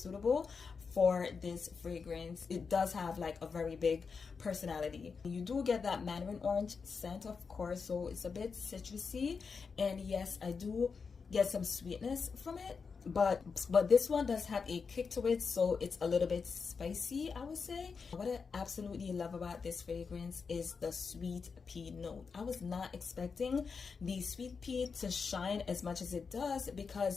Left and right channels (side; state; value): right; quieter; 5.3 dB